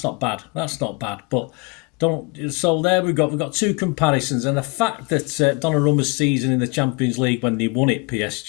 not bad. That's not bad. But don't. So there we've got two comparisons, and the fact that Donnarumma's season in the Champions League when they won it,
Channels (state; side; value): quieter; right; 28.9 dB